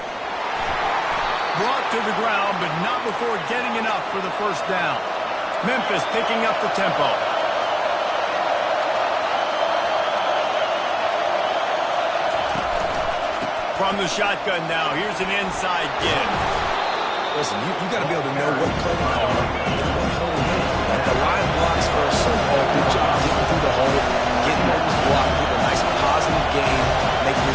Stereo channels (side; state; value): both; identical; correlation 1.00